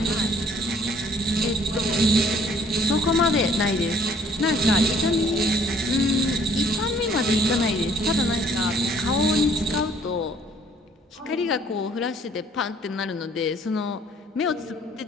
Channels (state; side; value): normal; both; correlation 0.58